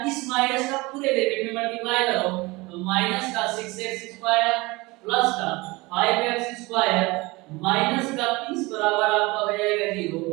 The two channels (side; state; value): left; quieter; 23.0 dB